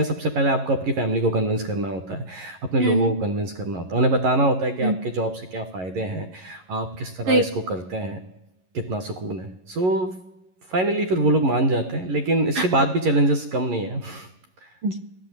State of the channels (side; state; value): left; late; 11 ms